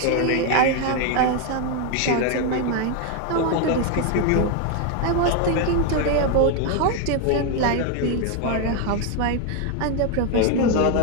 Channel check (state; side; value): different; both; correlation 0.01